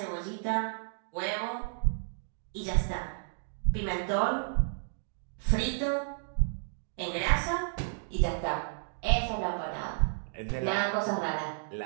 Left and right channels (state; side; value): silent; left; digital silence